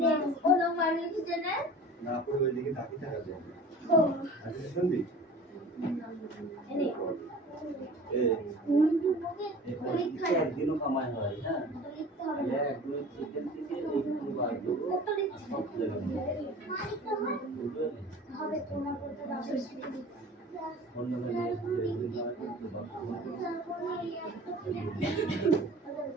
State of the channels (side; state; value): both; normal; correlation 0.42